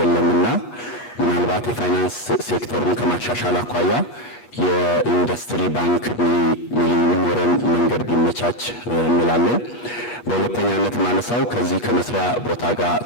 ምናልባት የፋይናንስ ሴክተሩን ከማሻሻል አኳያ የኢንዱስትሪ ባንክ የሚኖረን መንገድ ቢመቻች እንላለን። በሁለተኛነት ማነሳው ከዚህ ከመስሪያ ቦታ ጋር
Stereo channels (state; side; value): late; right; 8.3 ms